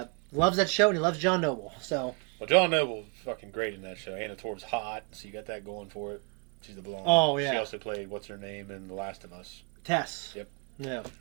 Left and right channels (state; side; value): quieter; left; 33.9 dB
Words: loves that show and he loves John Noble. So. Well, John Noble's fucking great in that show. Anna Torv's hot, so you got that going for it. She's the blonde. Oh, yeah. She also played, what's her name, in The Last of Us. Tess. Yep. Yeah.